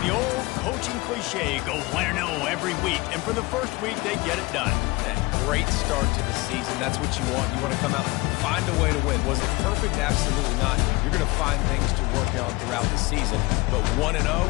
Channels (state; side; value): quieter; right; 23.7 dB